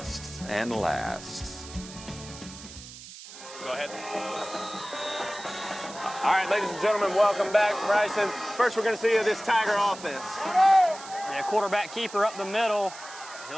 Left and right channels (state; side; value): noise; right; hiss, 15 dB below the sound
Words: and lasts. Go ahead. All right, ladies and gentlemen, welcome back. Bryson, first we're going to see this Tiger offense. Yeah, quarterback keeper up the middle.